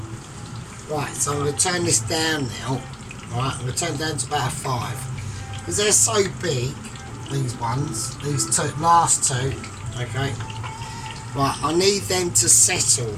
Right, so I'm going to turn this down now. Right, I'm going to turn it down to about a 5. Because they're so big, these ones, these last 2, okay. Right, I need them to settle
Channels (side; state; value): both; identical; correlation 1.00